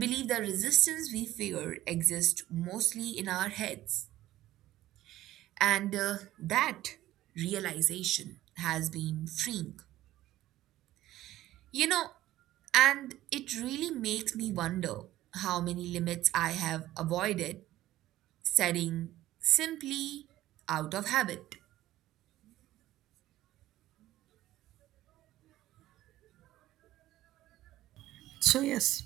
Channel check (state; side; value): quieter; left; 14.9 dB